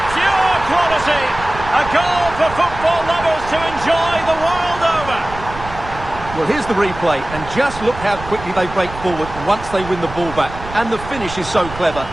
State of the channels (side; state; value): right; noise; rumble, 13 dB below the sound